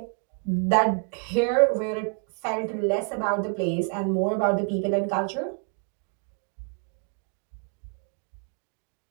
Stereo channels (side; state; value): left; quieter; 38.4 dB